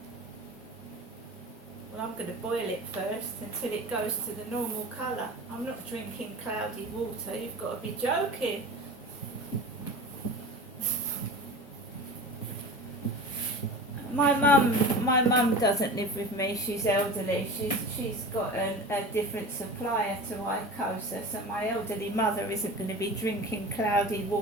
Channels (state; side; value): normal; both; correlation 0.33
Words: Well, I'm going to boil it first until it goes to the normal colour. I'm not drinking cloudy water, you've got to be joking. My mum doesn't live with me, she's elderly. She's got a different supplier to Icosa, so my elderly mother isn't going to be drinking cloudy